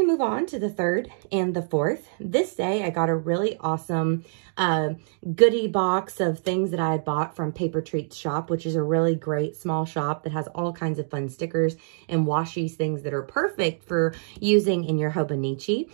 move on to the 3rd and the 4th. This day, I got a really awesome goodie box of things that I had bought from Paper Treats Shop, which is a really great small shop that has all kinds of fun stickers and washies, things that are perfect for using in your Hobonichi.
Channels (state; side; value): silent; left; digital silence